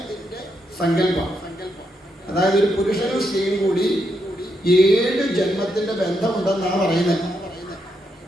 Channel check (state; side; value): normal; both; correlation 0.81